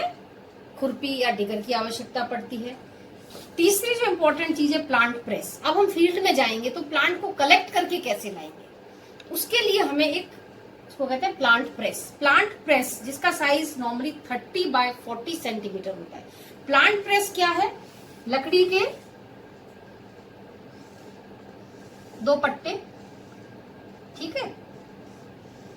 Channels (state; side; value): identical; both; correlation 1.00